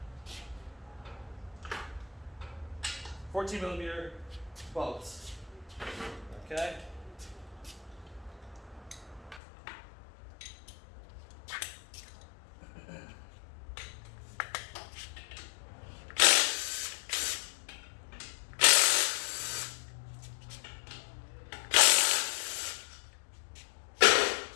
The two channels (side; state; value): right; drops out; at 9.4 s